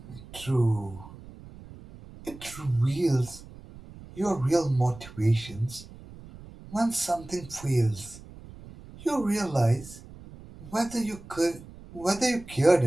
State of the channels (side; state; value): right; noise; rumble, 18 dB below the sound